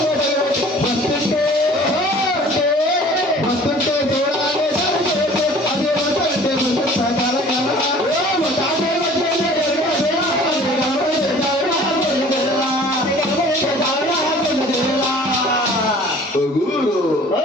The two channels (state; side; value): normal; both; correlation 0.49